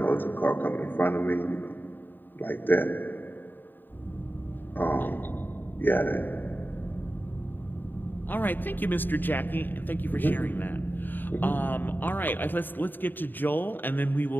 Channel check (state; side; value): late; right; 0.092 ms